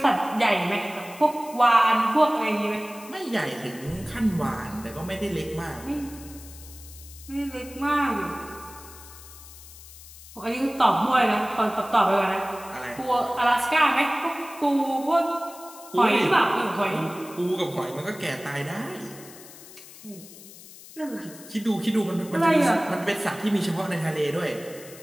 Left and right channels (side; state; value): left; noise; hiss, 18 dB below the sound